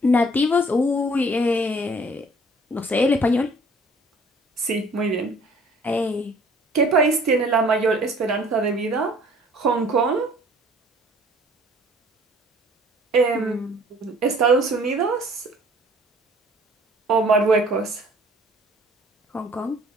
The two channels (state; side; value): normal; both; correlation 0.54